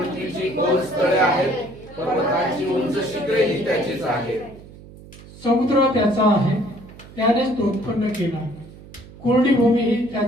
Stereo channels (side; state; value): right; noise; hum, 19 dB below the sound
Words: खोल स्थळे आहेत, पर्वतांची उंच शिखरे ही त्याचीच आहे. समुद्र त्याचा आहे, त्यानेच तो उत्पन्न केला. कोरडी भूमी ही